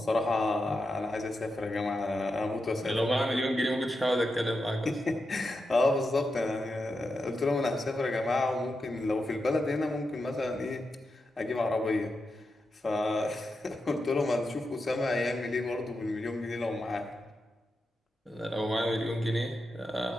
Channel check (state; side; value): normal; both; correlation 0.88